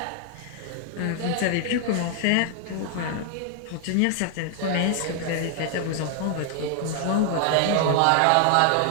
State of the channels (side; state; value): both; different; correlation 0.00